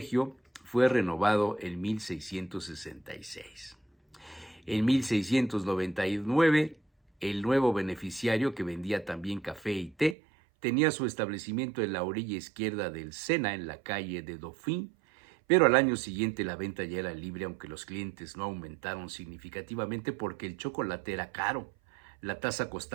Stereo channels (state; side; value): drops out; left; at 10.2 s